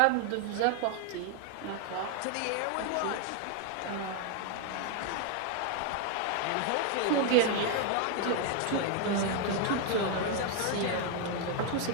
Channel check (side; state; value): both; different; correlation 0.01